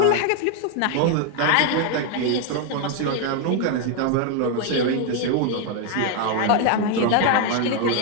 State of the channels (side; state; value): both; different; correlation 0.01